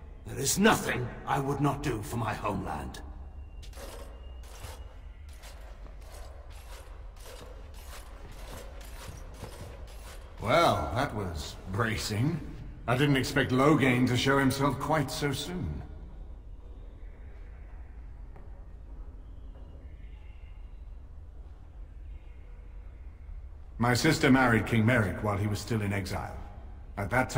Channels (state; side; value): identical; both; correlation 1.00